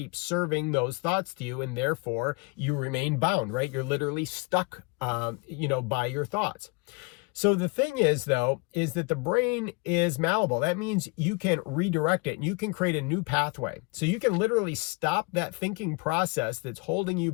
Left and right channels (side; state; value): right; quieter; 29.1 dB